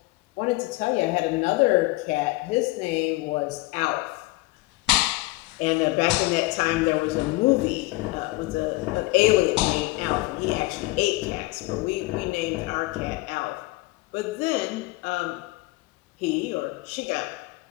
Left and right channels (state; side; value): quieter; right; 21.1 dB